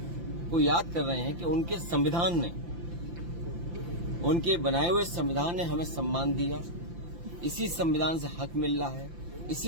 को याद कर रहे हैं कि उनके संविधान ने, उनके बनाए हुए संविधान ने हमें सम्मान दिया। इसी संविधान से हक मिल रहा है,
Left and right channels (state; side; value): late; left; 5.8 ms